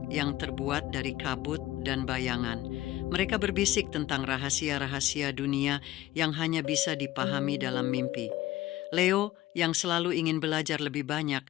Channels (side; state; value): right; quieter; 15.8 dB